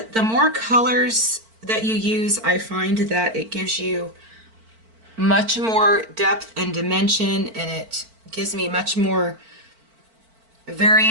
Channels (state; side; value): late; left; 4.5 ms